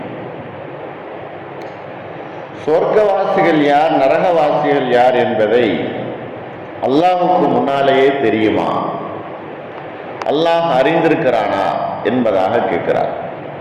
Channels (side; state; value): both; identical; correlation 1.00